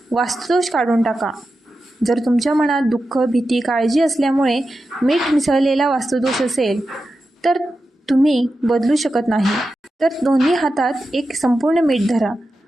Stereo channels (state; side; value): normal; both; correlation 0.91